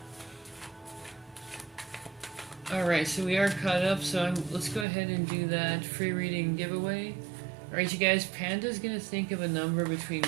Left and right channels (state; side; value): drops out; left; at 4.9 s